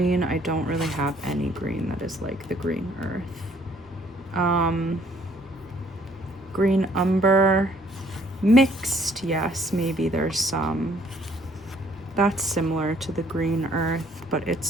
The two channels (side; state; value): both; normal; correlation 0.62